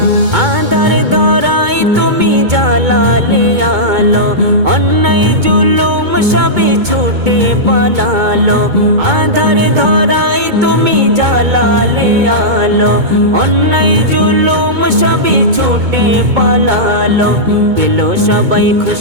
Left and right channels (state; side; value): late; left; 2.2 ms